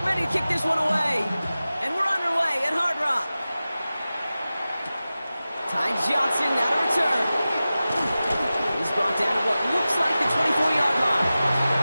ready to kick this one away. And we're underway at Hard Rock. Ty Johnson now to return. He's brought down at what looks like the 24-yard line.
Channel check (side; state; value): both; inverted; correlation -0.95